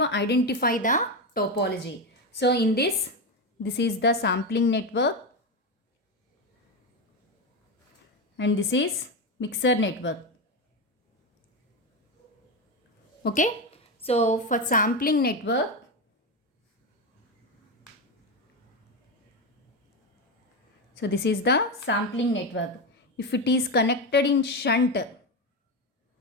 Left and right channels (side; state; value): both; normal; correlation 0.13